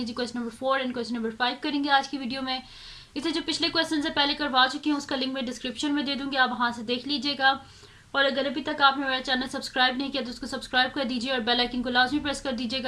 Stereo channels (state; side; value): identical; both; correlation 1.00